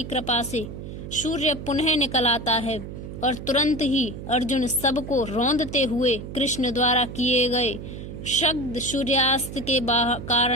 कृपा से सूर्य पुनः निकल आता है और तुरंत ही अर्जुन सबको रौंदते हुए कृष्ण द्वारा किए गए शब्द सूर्यास्त के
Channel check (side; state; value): right; noise; hum, 10 dB below the sound